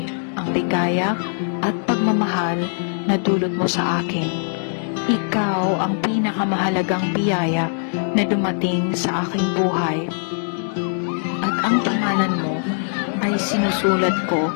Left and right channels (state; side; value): silent; right; digital silence